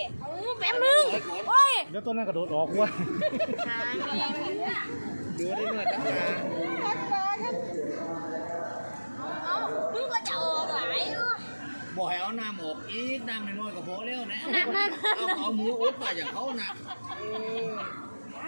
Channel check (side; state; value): both; inverted; correlation -1.00